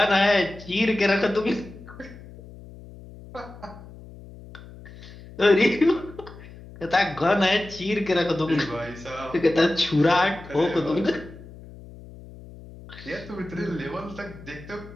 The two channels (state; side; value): noise; left; hum, 17 dB below the sound